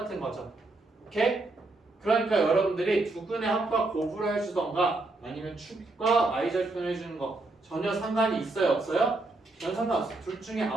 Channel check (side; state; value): left; quieter; 3.1 dB